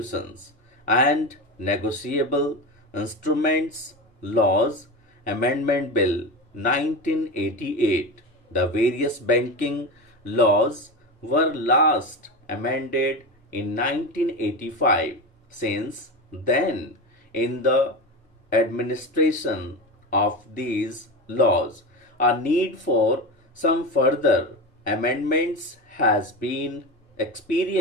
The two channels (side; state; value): both; normal; correlation 0.22